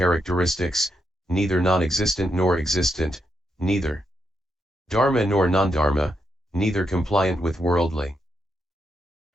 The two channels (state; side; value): normal; both; correlation 0.81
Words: neither non-existent nor existent, neither dharma nor non-dharma, neither compliant with worldly